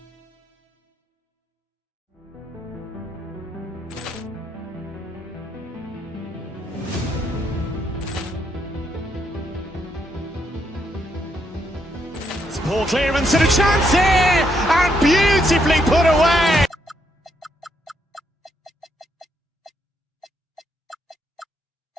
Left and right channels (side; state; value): both; normal; correlation 0.76